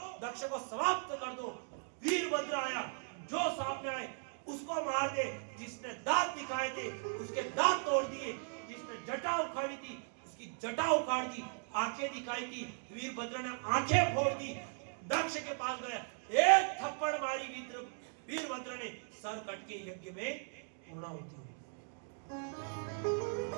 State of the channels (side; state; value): left; silent; 53 dB below the other